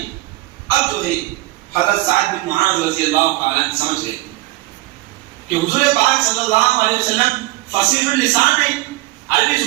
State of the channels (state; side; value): quieter; left; 19.3 dB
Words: اب جو ہے حضرت سعد بن معاذ رضی اللہ تعالیٰ عنہ سمجھ گئے کہ حضور پاک صلی اللہ علیہ وسلم فصیح اللسان ہیں، عربی